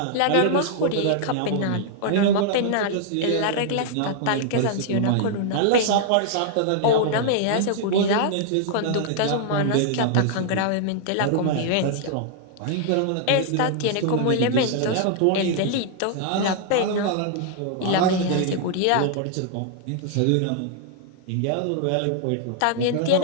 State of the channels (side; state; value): both; different; correlation -0.01